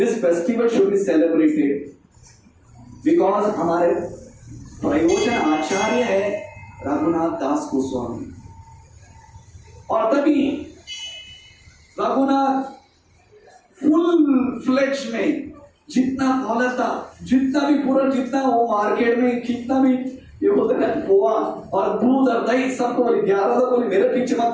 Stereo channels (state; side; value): identical; both; correlation 1.00